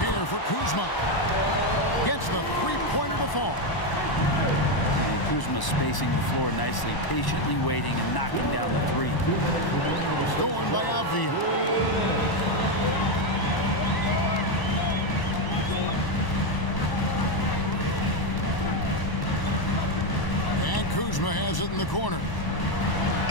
for Kuzma. Gets the three-pointer to fall. And Kuzma spacing the floor nicely, patiently waiting and knocking down the three. Stolen by Avdia. And Kuzma has it in the corner.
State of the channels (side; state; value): right; late; 1.0 ms